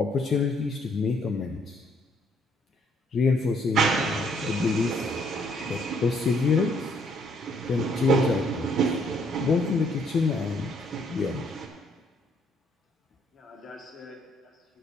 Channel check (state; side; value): normal; both; correlation 0.67